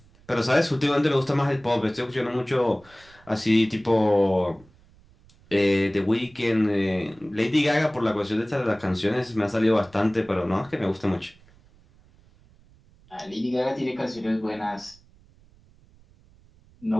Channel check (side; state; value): right; noise; rumble, 28 dB below the sound